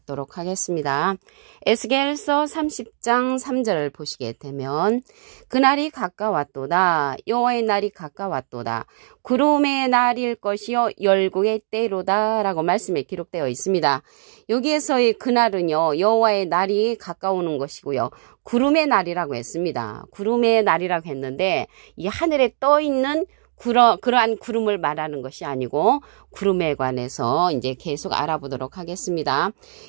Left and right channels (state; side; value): silent; left; digital silence